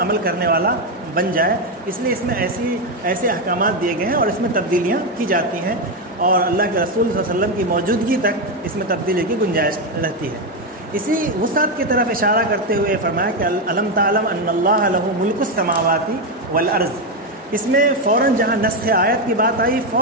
عمل کرنے والا بن جائے. اس لیے اس میں ایسے احکامات دیے گئے ہیں اور اس میں تبدیلیاں کی جاتی ہیں اور اللہ کے رسول صلی اللہ علیہ وسلم کی موجودگی تک اس میں تبدیلی کی گنجائش رہتی ہے. اسی وسعت کی طرف اشارہ کرتے ہوئے فرمایا کہ الم تعلم ان اللہ لہ ملک السماوات والارض. اس میں فوراً جہاں نسخ آیت کی بات آئی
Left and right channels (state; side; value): normal; both; correlation 0.07